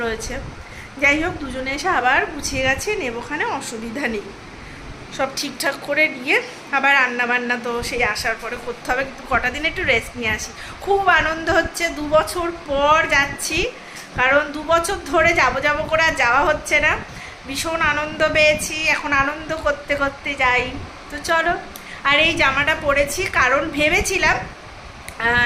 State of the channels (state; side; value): identical; both; correlation 1.00